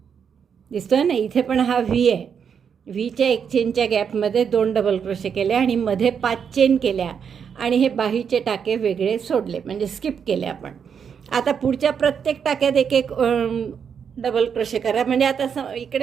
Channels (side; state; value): left; quieter; 7.2 dB